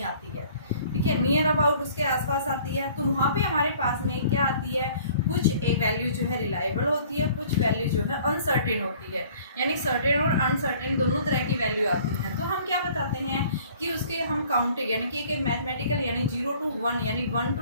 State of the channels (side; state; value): both; inverted; correlation -0.53